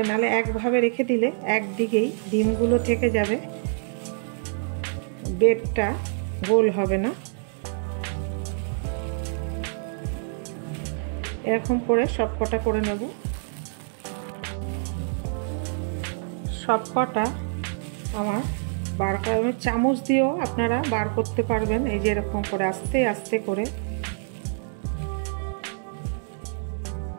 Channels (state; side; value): silent; left; digital silence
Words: নাহলে একভাবে রেখে দিলে একদিকেই ডিমগুলো থেকে যাবে, বেডটা গোল হবে না। এরকম করে সব কটা করে নেব। সব কটা আমার বার করা, চামচ দিয়েও আপনারা বার করতে পারবেন। এই যে এরকম করে আস্তে আস্তে করে